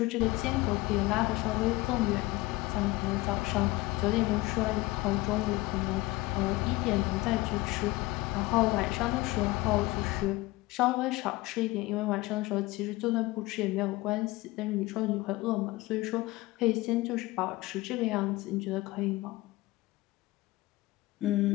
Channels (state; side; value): quieter; right; 19.8 dB